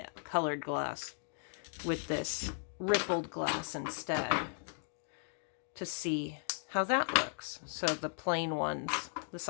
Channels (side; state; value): right; silent; 53 dB below the other